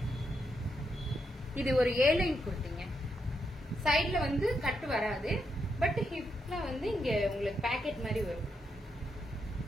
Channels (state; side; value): normal; both; correlation 0.81